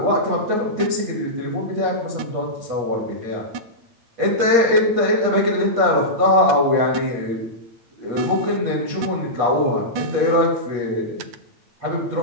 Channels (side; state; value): left; late; 8.8 ms